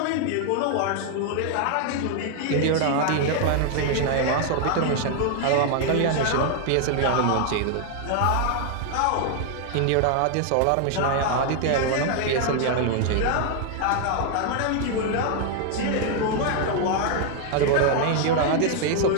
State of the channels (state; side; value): different; both; correlation 0.00